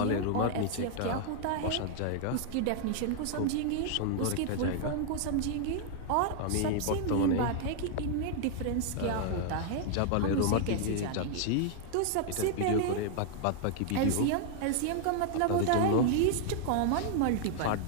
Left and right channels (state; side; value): different; both; correlation 0.00